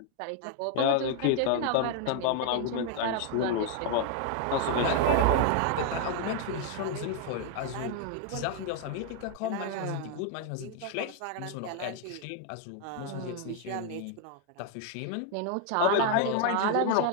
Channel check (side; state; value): both; different; correlation 0.00